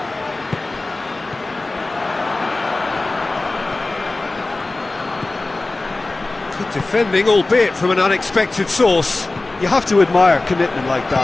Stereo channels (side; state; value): right; quieter; 3.1 dB